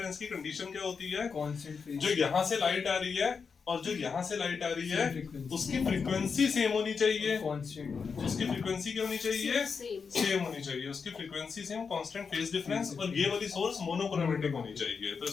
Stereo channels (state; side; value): quieter; right; 5.6 dB